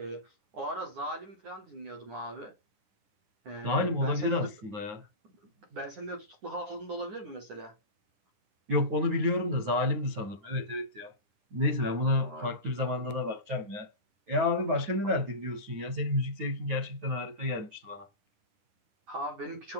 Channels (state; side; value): late; left; 9.5 ms